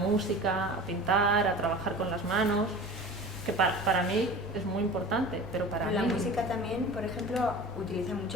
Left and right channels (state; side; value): normal; both; correlation 0.37